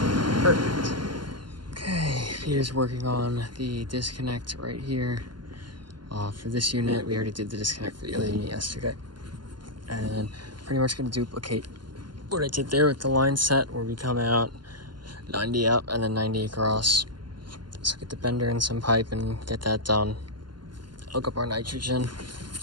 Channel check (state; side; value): late; left; 0.71 ms